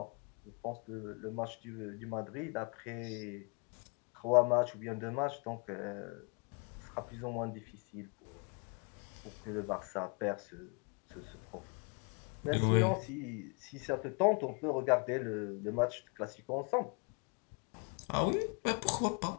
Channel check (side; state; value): right; quieter; 34.9 dB